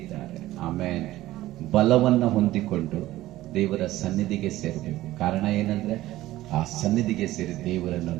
ಆಮೇಲೆ ಬಲವನ್ನು ಹೊಂದಿಕೊಂಡು ದೇವರ ಸನ್ನಿಧಿಗೆ ಸೇರಬೇಕು. ಕಾರಣ ಏನಂದ್ರೆ, ಆ ಸನ್ನಿಧಿಗೆ ಸೇರಿ ದೇವರನ್ನು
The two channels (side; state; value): left; quieter; 15.9 dB